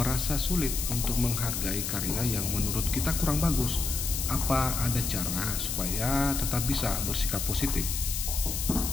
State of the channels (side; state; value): left; noise; hiss, 3 dB below the sound